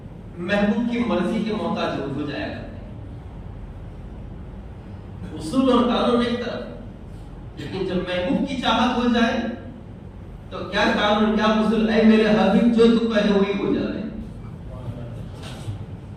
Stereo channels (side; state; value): both; identical; correlation 1.00